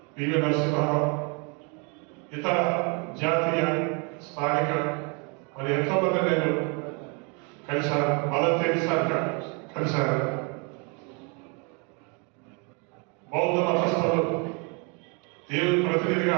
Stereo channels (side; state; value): left; quieter; 33.7 dB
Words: PV Narasimha Rao, ఇతర జాతీయ, స్థానిక మరి ఎంతో మంది నేను కలిశాను. మదర్ తెరీసా కలిశాను. బౌద్ధ మతస్థులు, దేవుని ప్రతినిధిగా